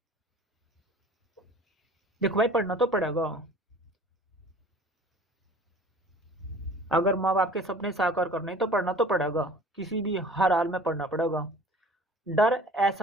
देखो भाई, पढ़ना तो पड़ेगा, अगर माँ बाप के सपने साकार करने तो पढ़ना तो पड़ेगा, किसी भी हर हाल में पढ़ना पड़ेगा। डर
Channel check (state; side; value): normal; both; correlation 0.46